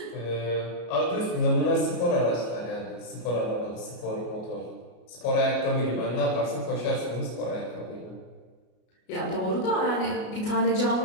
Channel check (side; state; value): right; late; 33 ms